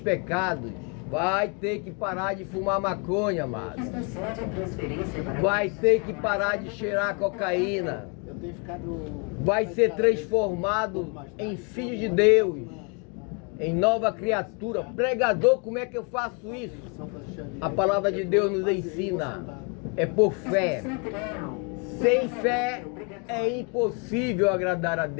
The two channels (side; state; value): right; quieter; 35.5 dB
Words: Vai ter que parar de fumar maconha, amado. Vai ter que parar de cheirar cocaína. Vai ser transformado em filho de Deus, em nova criatura. Pregador, como é que eu faço isso? A palavra de Deus nos ensina. É por fé. Sem fé é impossível agradar a